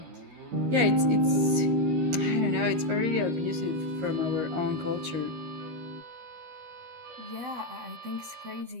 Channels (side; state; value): left; late; 13 ms